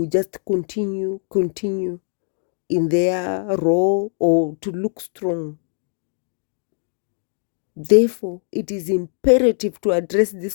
just continue in their role or to look strong. Therefore, it is imperative to address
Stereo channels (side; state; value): right; silent; digital silence